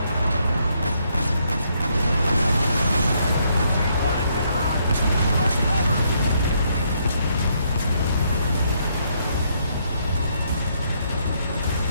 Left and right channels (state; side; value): inverted; both; correlation -0.73